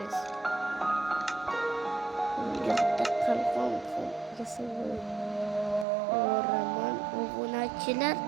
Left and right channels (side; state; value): left; drops out; at 5.9 s